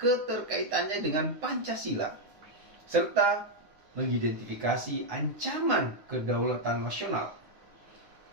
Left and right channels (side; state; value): left; late; 9.8 ms